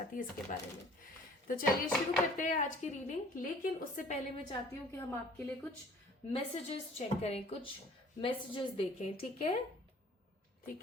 है, इसके बारे में। तो चलिए शुरू करते हैं आज की रीडिंग। लेकिन उससे पहले मैं चाहती हूँ कि हम आपके लिए कुछ मैसेजेस चेक करें, कुछ मैसेजेस देखें, ठीक है?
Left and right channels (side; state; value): both; normal; correlation 0.51